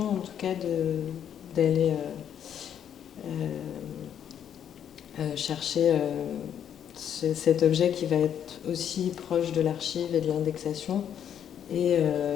en tout cas, d'aller chercher cet objet qui va être aussi proche de l'archive et de l'indexation, et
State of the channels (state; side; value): quieter; right; 9.2 dB